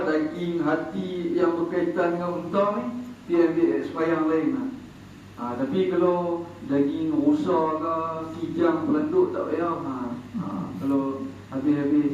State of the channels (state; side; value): identical; both; correlation 1.00